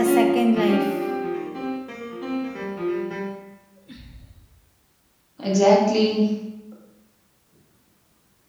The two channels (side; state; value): both; identical; correlation 1.00